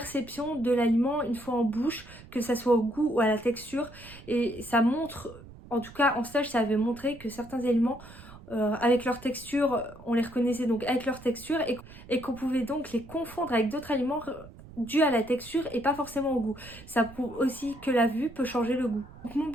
de l'aliment une fois en bouche, que ça soit au goût ou à la texture. Et ça montre, en tout cas en stage, ça avait montré que certains aliments avec leur texture, on les reconnaissait donc avec leur texture et qu'on pouvait donc les confondre avec d'autres aliments dû à la texture et pas forcément au goût. Ça prouve aussi que la vue peut changer le goût. Donc mon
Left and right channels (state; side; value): noise; right; rumble, 18 dB below the sound